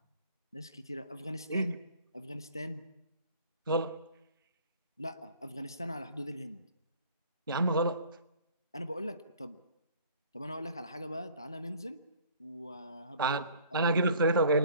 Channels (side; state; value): both; inverted; correlation -0.51